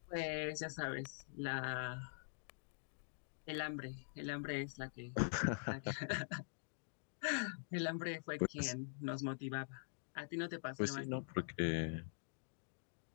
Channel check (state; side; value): silent; right; digital silence